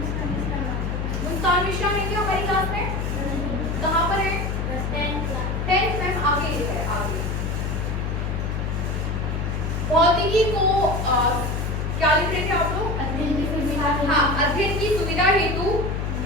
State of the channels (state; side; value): noise; left; hum, 2 dB below the sound